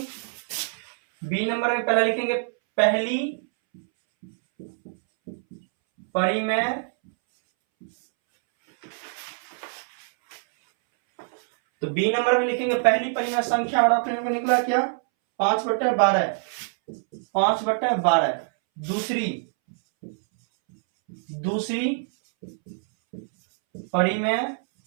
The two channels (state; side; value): silent; left; 62 dB below the other